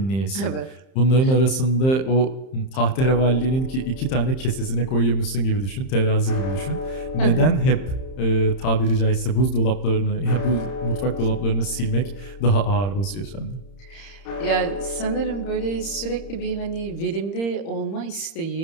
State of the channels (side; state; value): right; late; 31 ms